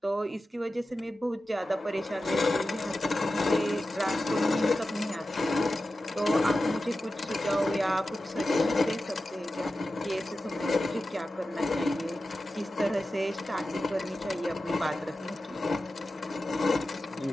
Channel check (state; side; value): normal; both; correlation 0.93